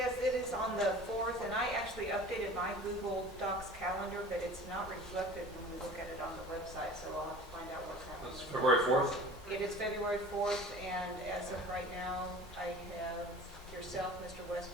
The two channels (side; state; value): both; normal; correlation 0.42